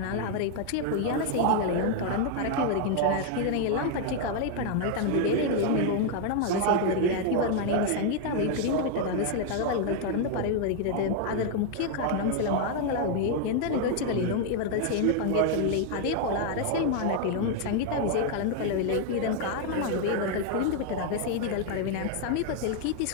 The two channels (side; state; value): both; different; correlation 0.00